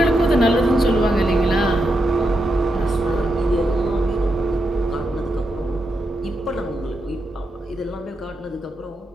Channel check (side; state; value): both; normal; correlation 0.85